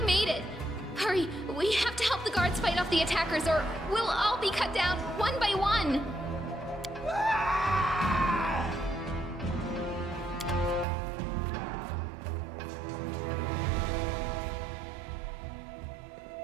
made it. Hurry, we have to help the guards fight off the attackers or we'll all be cut down one by one.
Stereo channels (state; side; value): drops out; left; at 10.9 s